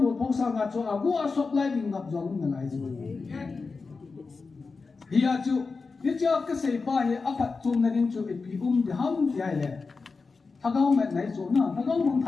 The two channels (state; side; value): quieter; right; 4.4 dB